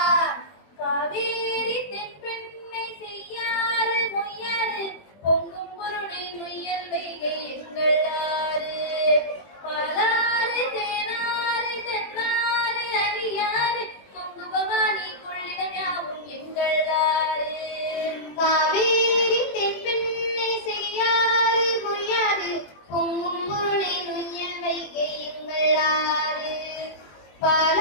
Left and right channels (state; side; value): late; right; 21 ms